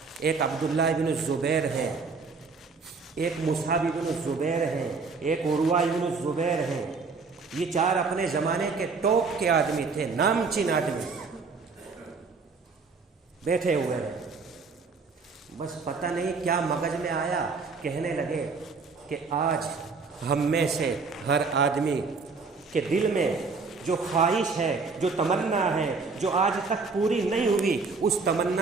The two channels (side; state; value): left; quieter; 4.5 dB